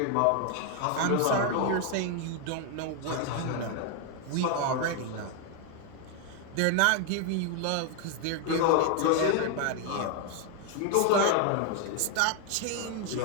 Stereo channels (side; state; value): both; different; correlation 0.01